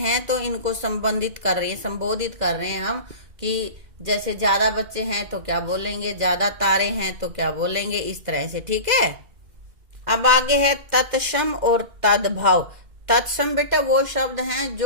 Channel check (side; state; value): left; late; 2.1 ms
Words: तो इनको संबोधित कर रहे हैं हम, कि जैसे ज्यादा बच्चे हैं तो क्या बोलेंगे, ज्यादा तारे हैं तो क्या बोलेंगे, इस तरह से, ठीक है। अब आगे है तत्सम और तद्भव। तत्सम बेटा वो शब्द हैं